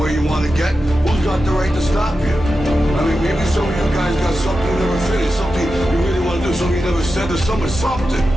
you want to get, who's got the right to stop you? I mean, maybe some of you guys got something you never finished, something you really want to do, something you never said to someone, something.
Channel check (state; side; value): normal; both; correlation 0.91